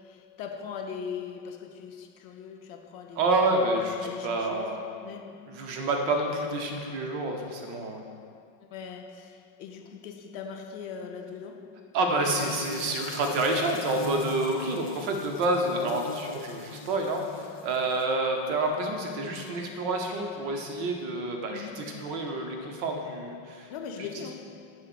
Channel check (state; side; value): late; left; 5.5 ms